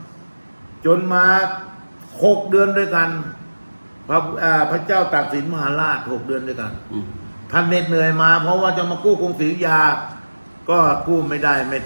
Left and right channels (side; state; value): both; inverted; correlation -1.00